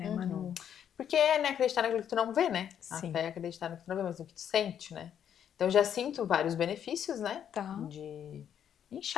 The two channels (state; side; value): quieter; right; 9.1 dB